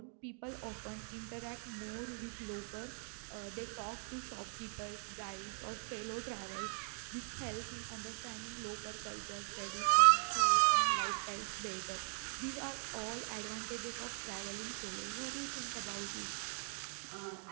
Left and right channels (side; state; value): left; silent; 51 dB below the other